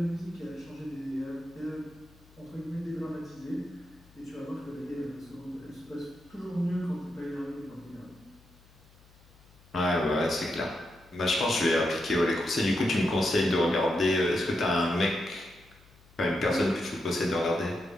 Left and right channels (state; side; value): noise; left; hum, 27 dB below the sound